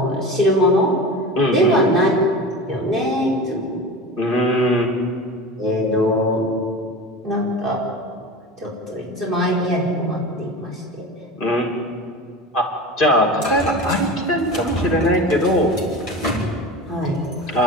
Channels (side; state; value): both; normal; correlation 0.31